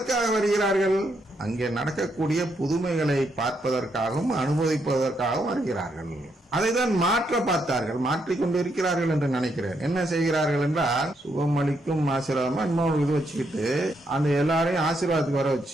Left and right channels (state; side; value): normal; both; correlation 0.77